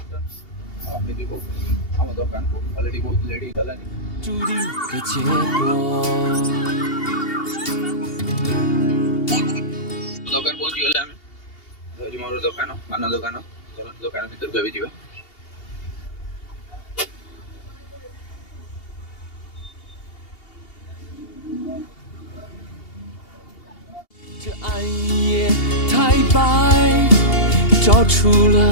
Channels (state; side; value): late; right; 2.8 ms